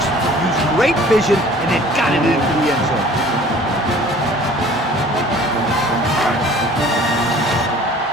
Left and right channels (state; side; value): normal; both; correlation 0.49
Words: used great vision, and then got it into the end zone.